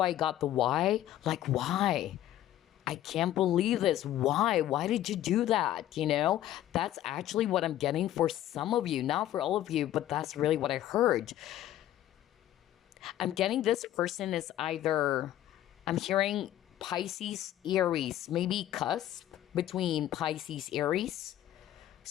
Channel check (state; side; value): quieter; right; 12.9 dB